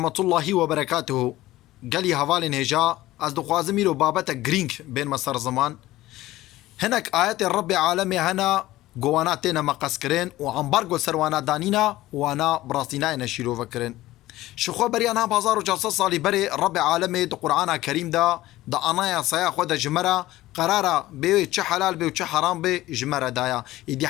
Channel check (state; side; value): quieter; right; 16.5 dB